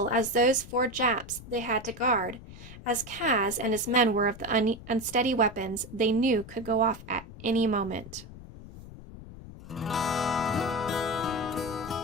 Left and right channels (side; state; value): left; noise; rumble, 15 dB below the sound